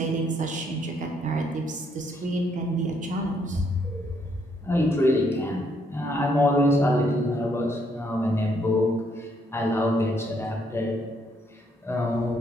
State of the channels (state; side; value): normal; both; correlation 0.71